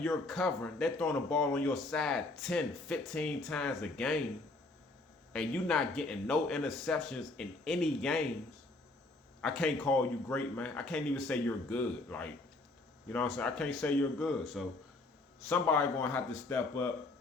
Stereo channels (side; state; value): right; quieter; 3.1 dB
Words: covering, they're throwing the ball on your side 10, 15 times a game, and you're not getting no interceptions in any games, I can't call you great, man. I can't even say you're good. Like, you know what I'm saying? I can't say you're good. So somebody going to have to step up.